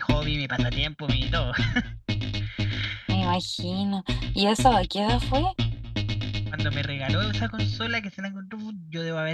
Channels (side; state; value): both; identical; correlation 1.00